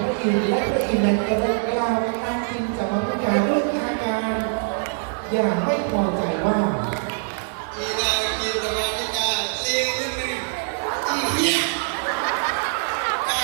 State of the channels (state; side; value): silent; left; 63 dB below the other